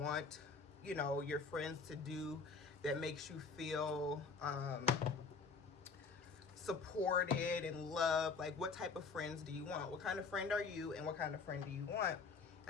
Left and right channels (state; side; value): quieter; right; 4.8 dB